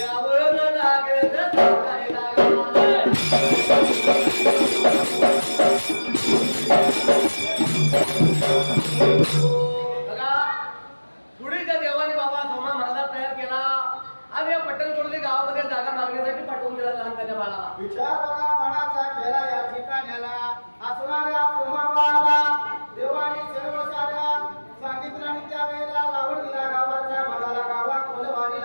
लागेल सांगायला बघा सुडीच्या देवाने बाबा सोमा महाराज तयार केला आणि या पट्टणकोडली गावामध्ये जागा मागण्यासाठी पाठवून दिला लहान त्याच्या बाळाला विचार बघा मनाचा केला या ठिकाण्याला असणाऱ्या सोमाबाळाला देवाने सर्व साऱ्या सांगितलं आणि त्यावेळेला लावून दिला गावाच्या मनाला गावा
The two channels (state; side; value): inverted; both; correlation -1.00